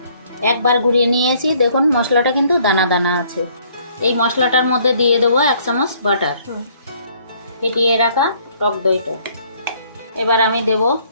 একবার ঘুরিয়ে নিয়েছি, দেখুন মশলাটা কিন্তু দানা দানা আছে। এই মশলাটার মধ্যে দিয়ে দেবো 1 চামচ বাটার, ফেটিয়ে রাখা টক দইটা। এবার আমি দেব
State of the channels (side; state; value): both; inverted; correlation -0.63